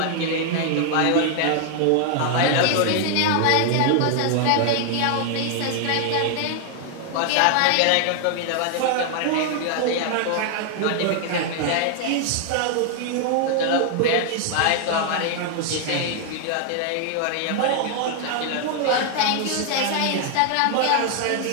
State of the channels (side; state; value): both; different; correlation 0.00